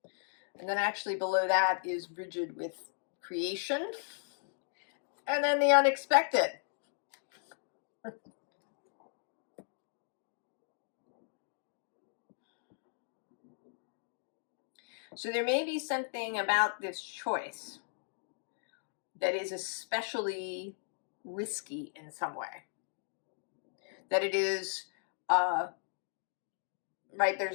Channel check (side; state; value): right; silent; digital silence